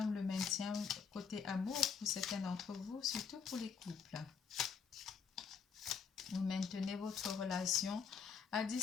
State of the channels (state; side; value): quieter; right; 6.3 dB